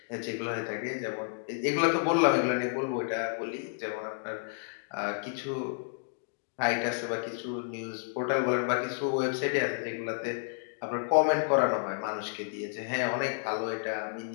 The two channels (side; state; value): right; silent; digital silence